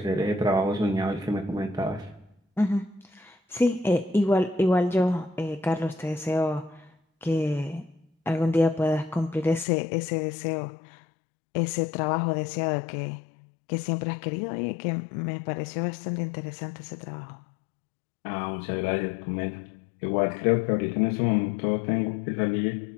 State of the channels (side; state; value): right; drops out; at 9.7 s